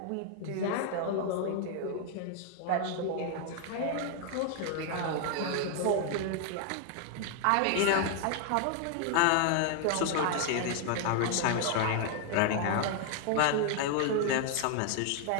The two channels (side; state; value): both; different; correlation 0.00